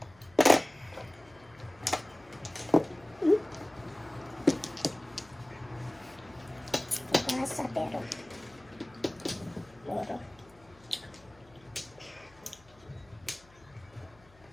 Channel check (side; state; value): left; noise; hum, 26 dB below the sound